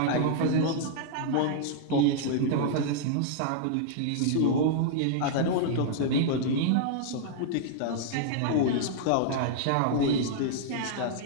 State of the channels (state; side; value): different; both; correlation -0.01